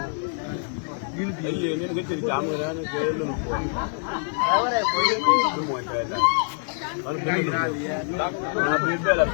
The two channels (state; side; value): silent; right; 62 dB below the other